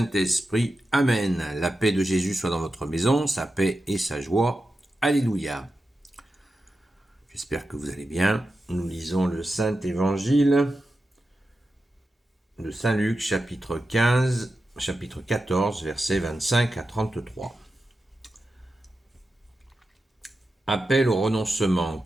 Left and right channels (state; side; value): normal; both; correlation 0.91